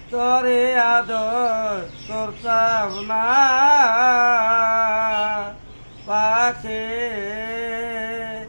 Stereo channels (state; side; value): inverted; both; correlation -1.00